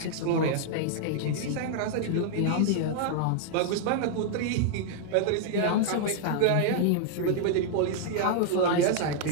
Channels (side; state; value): both; different; correlation -0.01